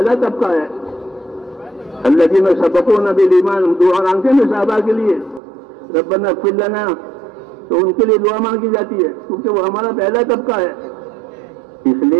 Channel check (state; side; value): drops out; left; at 5.4 s